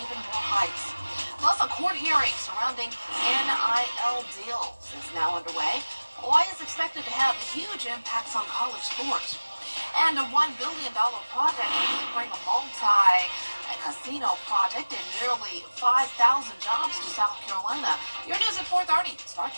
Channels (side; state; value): both; inverted; correlation -1.00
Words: more hikes. Plus, a court hearing surrounding NIL deals is now underway. Hawaii is expected to have huge impacts on college sports. And a $1 billion project will bring a multi-casino project and nearly 5,000 jobs to South Carolina. Your news at 4:30 starts